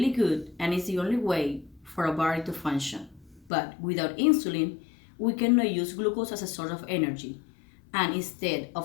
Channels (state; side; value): drops out; right; at 3.5 s